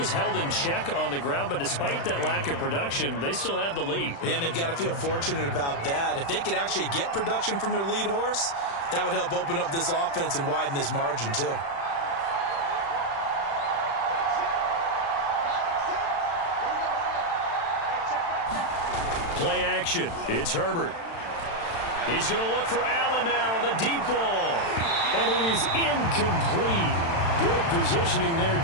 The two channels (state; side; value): late; right; 36 ms